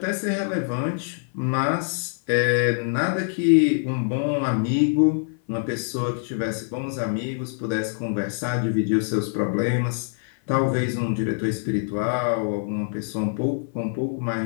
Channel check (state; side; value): silent; right; 55 dB below the other